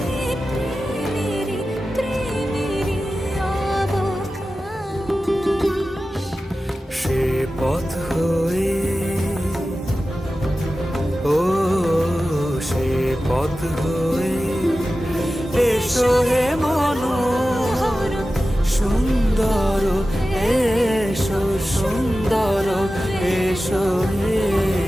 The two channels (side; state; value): both; normal; correlation 0.94